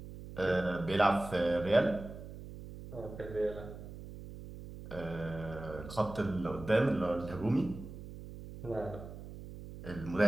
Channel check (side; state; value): right; noise; hum, 12 dB below the sound